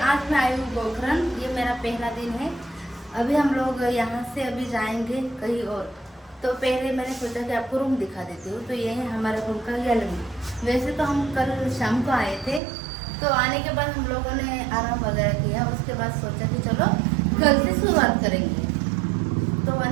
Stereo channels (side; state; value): left; drops out; at 12.6 s